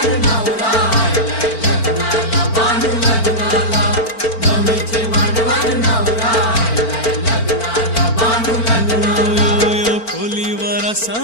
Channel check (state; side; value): late; right; 4.5 ms